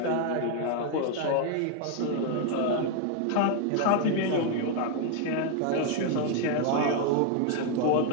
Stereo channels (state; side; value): different; both; correlation 0.00